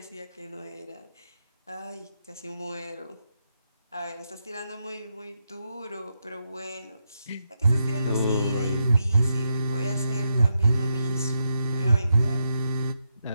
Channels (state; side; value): inverted; both; correlation -0.84